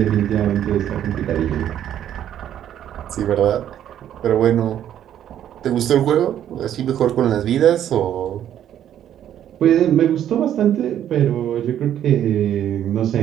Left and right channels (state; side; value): quieter; left; 10.7 dB